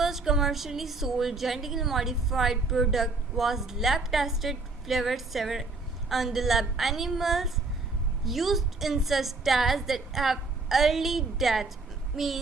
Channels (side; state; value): left; quieter; 3.6 dB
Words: commercially sold genetically modified product was lab tested flavored sour on the lab animals used in such tests that have early death,